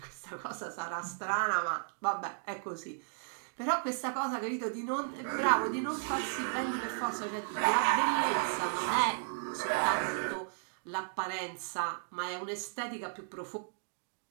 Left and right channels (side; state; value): left; silent; digital silence